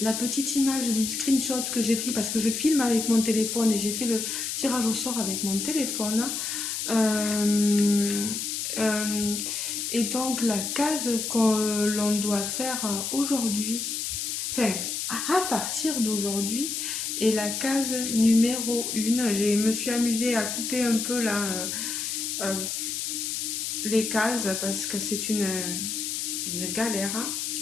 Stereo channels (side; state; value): left; noise; hiss, 3 dB below the sound